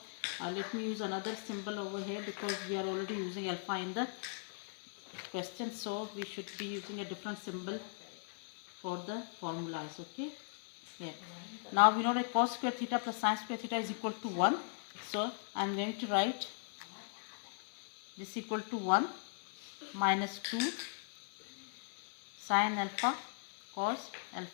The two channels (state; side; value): silent; right; 52 dB below the other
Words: let me use another symbol over here because we are already using alpha in the question, so we should be using a different symbol for the formulas. Okay, yeah. Now we know that cos square theta plus sin square theta is equal to 1, so I am going to write this equal to 1 minus 2 sin alpha cos